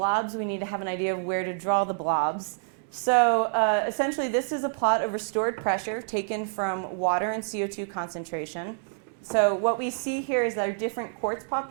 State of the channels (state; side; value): silent; left; digital silence